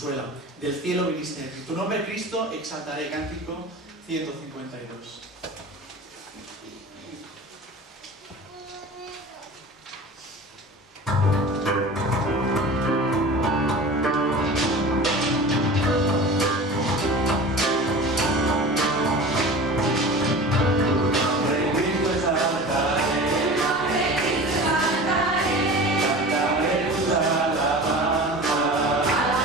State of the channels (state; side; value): normal; both; correlation 0.36